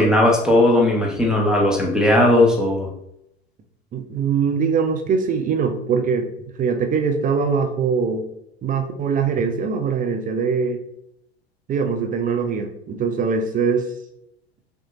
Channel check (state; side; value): normal; both; correlation 0.46